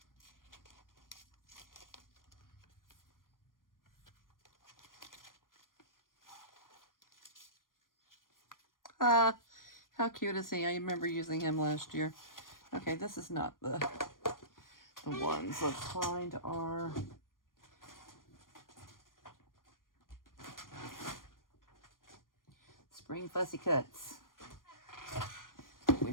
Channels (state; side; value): late; right; 0.90 ms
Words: How cute is he? I remember using him last year. Okay, this is not the ones. Let's find our spring fussy cuts